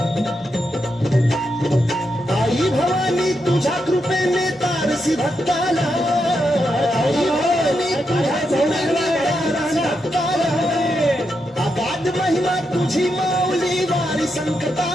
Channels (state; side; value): normal; both; correlation 0.83